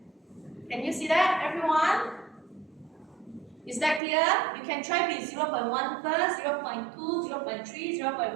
Can you see that, everyone? Is that clear? You can try with 0.1 first, 0.2, 0.3,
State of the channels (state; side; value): drops out; left; at 4.0 s